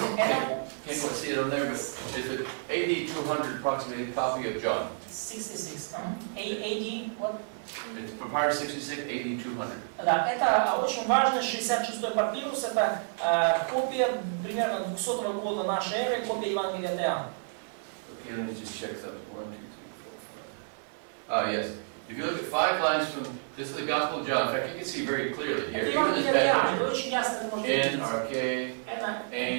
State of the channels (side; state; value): left; silent; 58 dB below the other